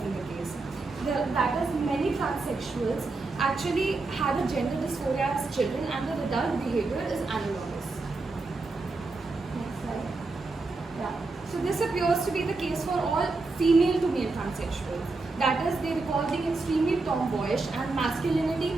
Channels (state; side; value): quieter; left; 3.6 dB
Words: the case. That is, many transsexuals actually had a gender dysphoria as children, and their adult behavior is analogous. Next slide. Yeah. So this appears to be the case for all female to male transsexuals. That is, they recall being extremely tomboyish and masculinity